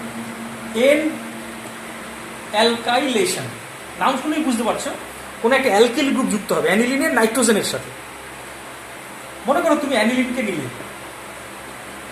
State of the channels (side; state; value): both; identical; correlation 1.00